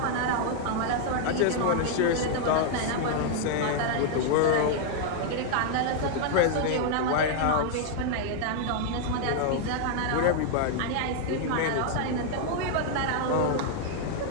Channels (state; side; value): different; both; correlation 0.00